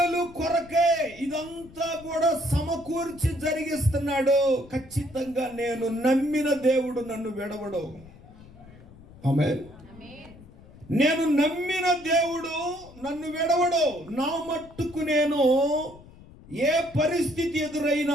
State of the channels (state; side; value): noise; left; rumble, 21 dB below the sound